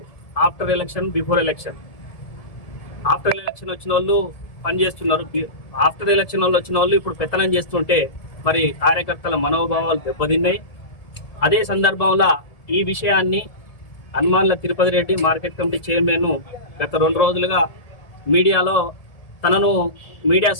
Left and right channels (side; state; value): right; late; 1.7 ms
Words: ఆఫ్టర్ ఎలక్షన్ బిఫోర్ ఎలక్షన్ వచ్చిన వాళ్ళు పనిచేస్తున్నారు. ఆఫ్టర్ ఎలక్షన్ వాళ్ళు వచ్చిన వాళ్ళు ఇప్పుడు పెత్తనం చేస్తుంటే మరి కార్యకర్తల మనోభావాలు దెబ్బతిన్నాయి. అదే సందర్భంలో ఈ విషయాన్ని హనుమాన్ల Tirupati Reddy market committee chairman గత 2 రోజులుగా మీడియాలో తనను మీడియా